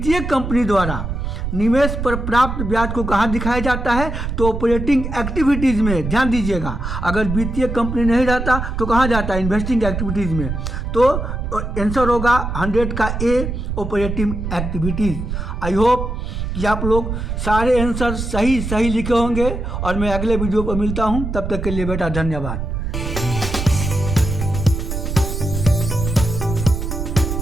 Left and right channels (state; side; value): noise; right; rumble, 4 dB below the sound